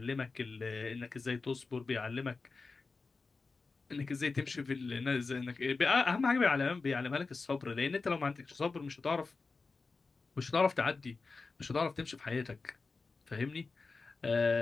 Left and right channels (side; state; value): right; quieter; 4.1 dB